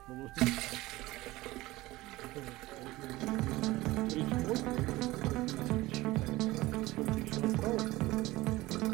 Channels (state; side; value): quieter; left; 18.9 dB